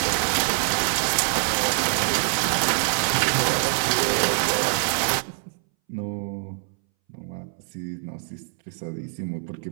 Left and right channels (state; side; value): silent; left; 61 dB below the other